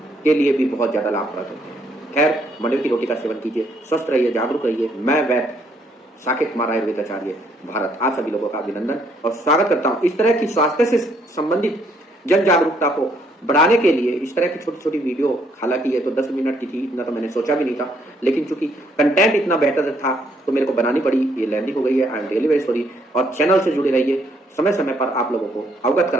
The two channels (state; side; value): normal; both; correlation 0.69